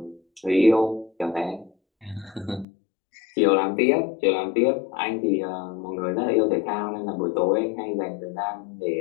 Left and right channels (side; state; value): right; drops out; at 2.7 s